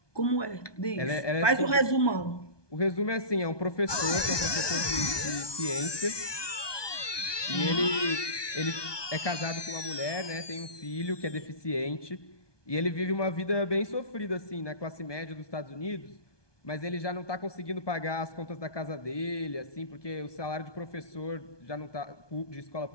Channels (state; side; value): late; right; 1.2 ms